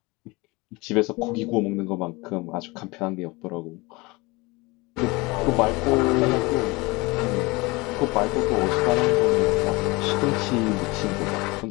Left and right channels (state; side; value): quieter; right; 24.2 dB